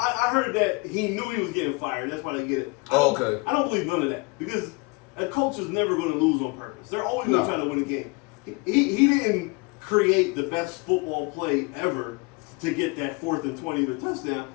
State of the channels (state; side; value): quieter; right; 27.9 dB